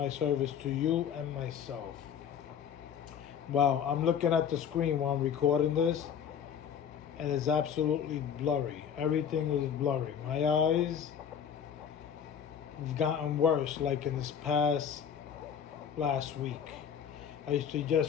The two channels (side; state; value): right; quieter; 8.0 dB